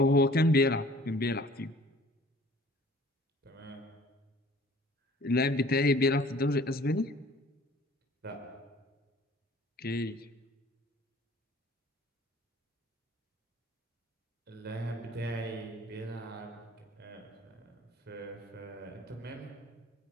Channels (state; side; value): normal; both; correlation 0.52